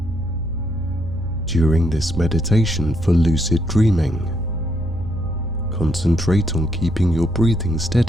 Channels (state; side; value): noise; right; rumble, 12 dB below the sound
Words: During this meditation for lucid dreaming, concentrate on keeping your breathing